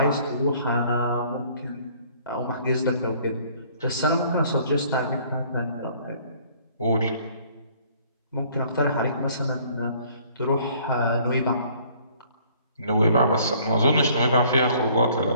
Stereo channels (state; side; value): inverted; both; correlation -0.58